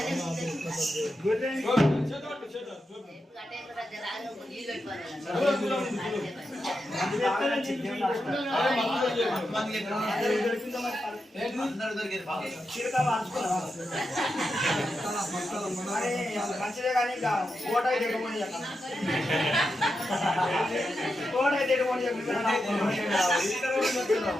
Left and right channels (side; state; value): both; normal; correlation 0.88